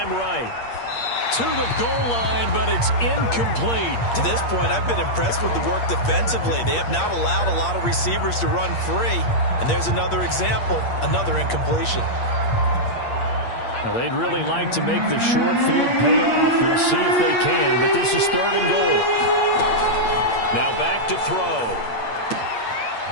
right. To the goal line, but it's incomplete. To this point, I've been impressed with the work defensively. They have not allowed a lot of receivers to run free. And there's another example, another incompletion. Now, they'd really like to make the short field pay off. We'll see if they can, but this is 3rd and goal. Now back to throw.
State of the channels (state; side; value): late; right; 8.5 ms